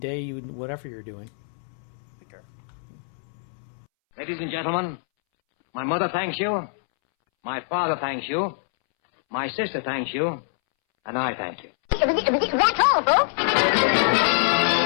whatever you're doing. Take care. Ladies and gentlemen, my mother thanks you. My father thanks you. My sister thanks you. And I thank you. That's all, folks.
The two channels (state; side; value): silent; right; 62 dB below the other